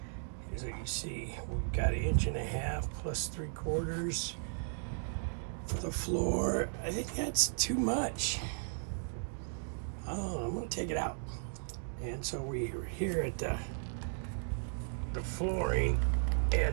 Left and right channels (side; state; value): left; silent; digital silence